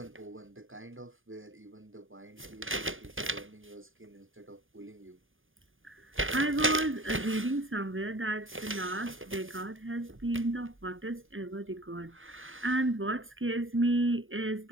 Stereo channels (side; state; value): left; late; 0.58 ms